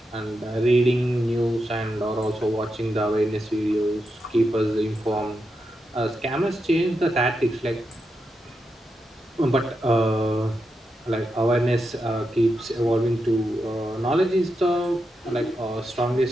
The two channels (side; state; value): both; normal; correlation 0.86